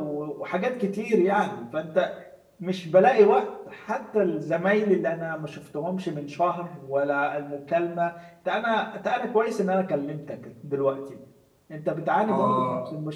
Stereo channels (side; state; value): both; identical; correlation 1.00